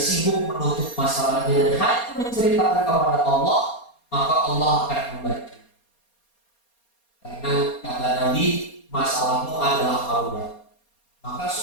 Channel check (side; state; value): right; late; 4.3 ms